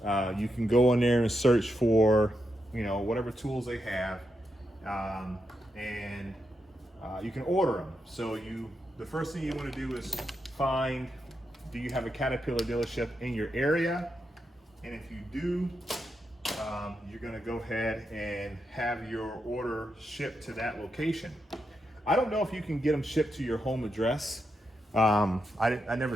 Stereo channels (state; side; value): normal; both; correlation 0.85